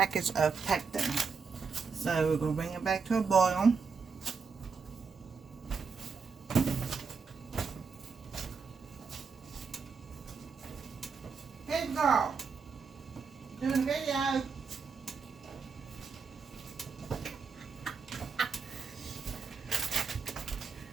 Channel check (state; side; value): quieter; left; 5.3 dB